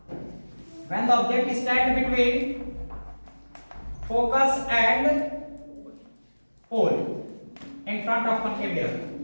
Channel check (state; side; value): inverted; both; correlation -1.00